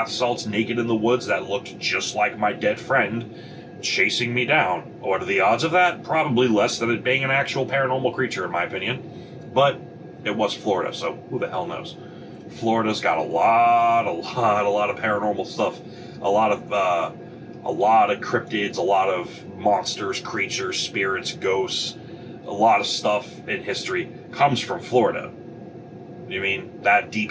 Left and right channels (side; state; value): both; identical; correlation 1.00